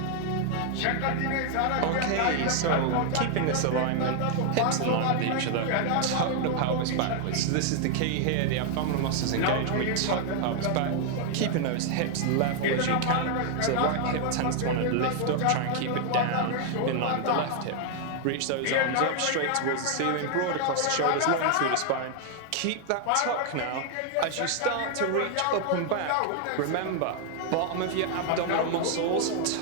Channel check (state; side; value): different; both; correlation 0.00